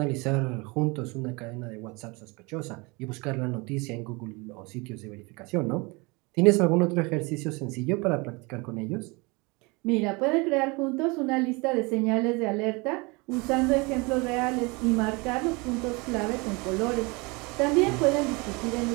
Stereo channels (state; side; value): quieter; left; 27.0 dB